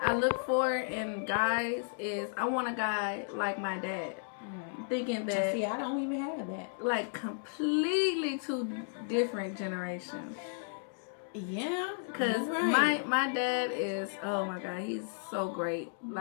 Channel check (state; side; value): silent; right; digital silence